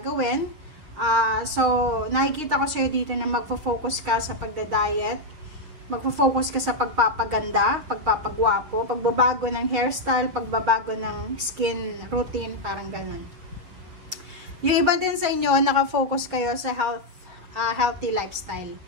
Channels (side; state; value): left; late; 6.4 ms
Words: So nakikita ko sa iyo dito na magfo-focus ka sa pagda-diet, magfo-focus ka sa pagpapaganda, pagpapagwapo, pagbabago ng hairstyle, pagbabago ng skin routine, parang ganun. Yung iba din sa inyo, nakafocus kayo sa healthy lifestyle.